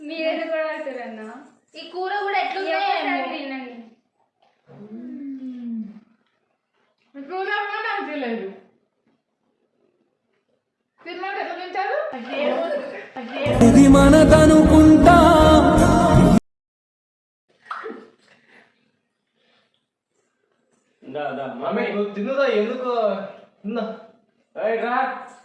మీరేది కూడా పడుతున్నా. ఈ కూర కూడా ఎట్లుంది? తినండి. కూర కూడా మంచిగా లేదు. తిన్నాక ఎట్లా తింటారు? ఇది మనదనుకుంటా. మమ్మీ నువ్వు తిన్నదా? ఎందుకు తిన్నా? రా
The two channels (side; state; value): both; identical; correlation 1.00